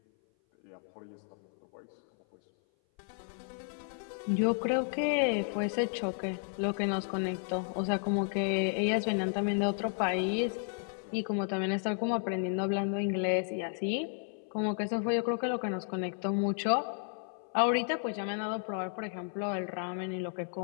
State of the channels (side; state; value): right; silent; 56 dB below the other